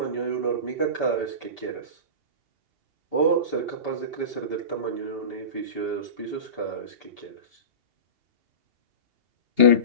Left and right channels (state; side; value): late; left; 2.8 ms